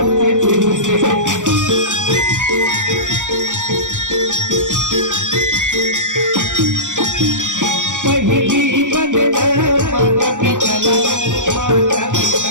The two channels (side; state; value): left; late; 0.86 ms